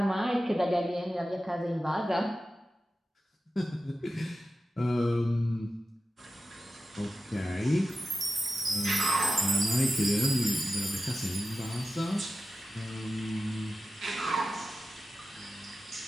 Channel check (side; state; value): both; normal; correlation 0.93